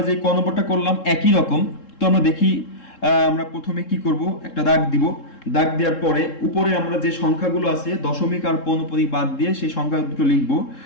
যে ক নম্বরটা করলাম একই রকম। তো আমরা দেখি, আমরা প্রথমে কি করব, একটা দাগ দিব, দাগ দেওয়ার পরে উপরে আমরা যে সংখ্যাগুলো আছে দশমিক আর পৌনঃপুনিক বাদ দিয়ে সেই সংখ্যা দুটো লিখব।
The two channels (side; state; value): right; late; 3.7 ms